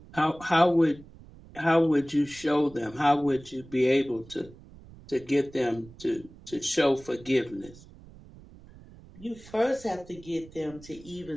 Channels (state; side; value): noise; right; rumble, 21 dB below the sound